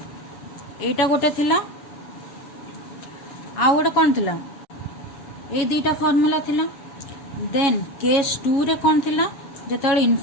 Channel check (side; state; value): right; late; 7.2 ms